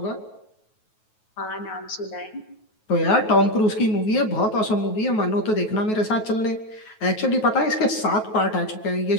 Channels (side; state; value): right; late; 9.3 ms